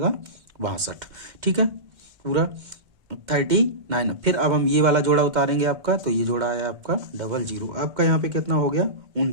62। ठीक है, पूरा 39। फिर अब हम ये वाला जोड़ा उतारेंगे आपका, तो ये जोड़ा आया आपका 00, आपका यहाँ पे कितना हो गया,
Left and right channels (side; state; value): left; late; 2.1 ms